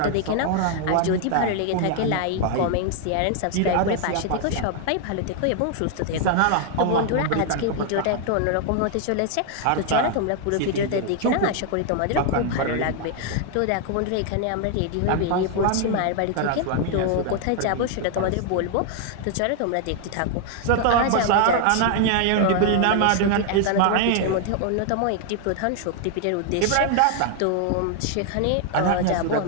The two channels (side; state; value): both; different; correlation 0.00